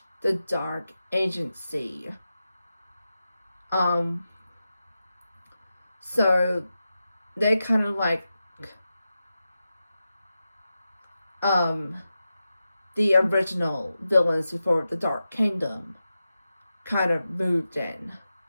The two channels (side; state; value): both; inverted; correlation -0.91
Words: the Dark Agency. So they kind of like the original villains before the Dark Kingdom kind of moved in.